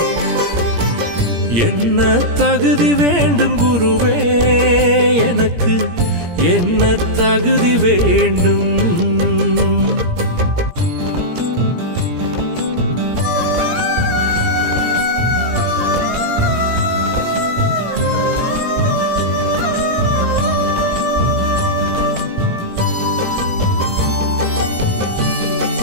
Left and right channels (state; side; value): late; left; 17 ms